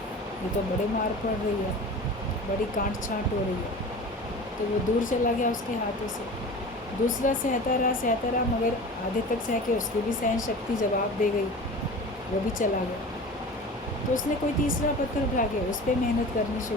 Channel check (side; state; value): both; normal; correlation 0.36